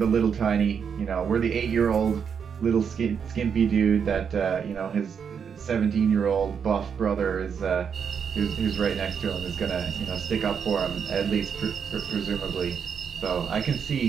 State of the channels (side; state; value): left; quieter; 7.0 dB